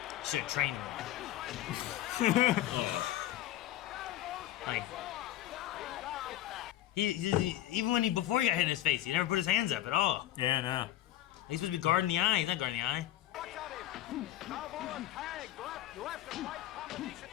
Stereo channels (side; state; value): right; quieter; 13.8 dB